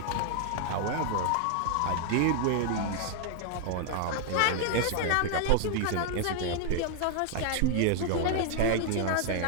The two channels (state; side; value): different; both; correlation 0.00